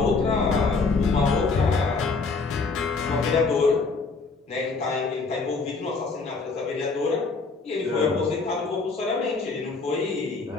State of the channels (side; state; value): right; quieter; 4.2 dB